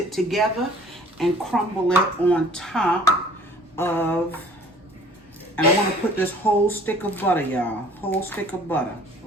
together and crumble it on top of, and I want to put this whole stick of butter, y'all. Whole stick of butter,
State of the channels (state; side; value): normal; both; correlation 0.51